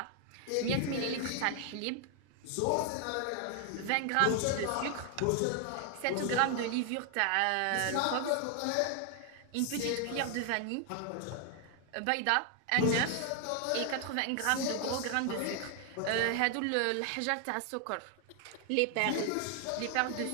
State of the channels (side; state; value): both; different; correlation 0.00